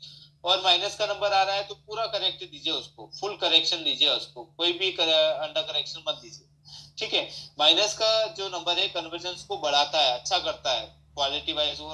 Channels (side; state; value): both; identical; correlation 1.00